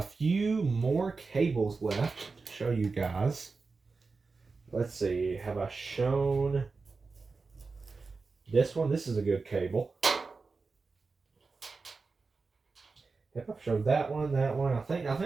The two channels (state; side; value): quieter; left; 4.3 dB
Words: few more cables left to show you guys. Let's see, have I shown this one? This is a good cable. Yep, I've showed that one. I